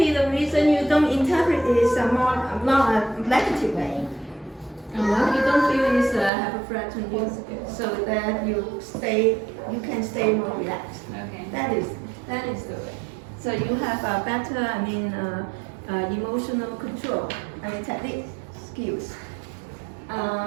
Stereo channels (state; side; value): drops out; left; at 6.3 s